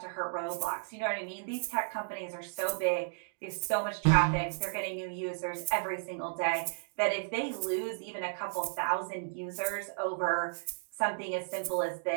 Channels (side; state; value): left; silent; digital silence